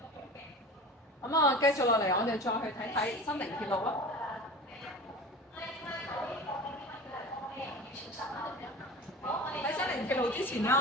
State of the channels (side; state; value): both; normal; correlation 0.35